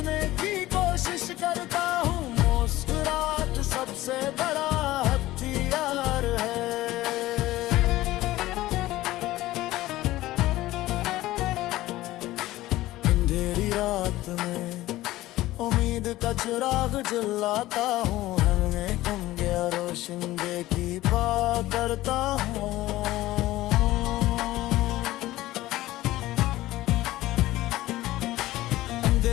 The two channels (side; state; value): right; quieter; 16.6 dB